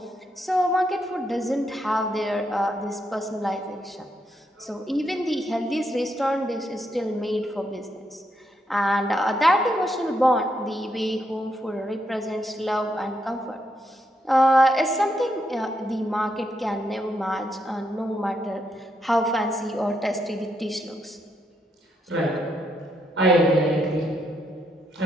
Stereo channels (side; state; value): both; normal; correlation 0.79